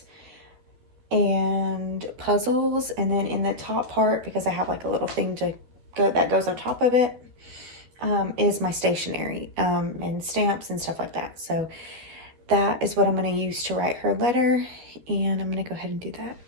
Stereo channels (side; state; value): left; late; 13 ms